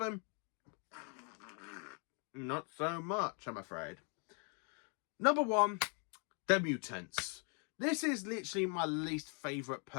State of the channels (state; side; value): quieter; right; 37.3 dB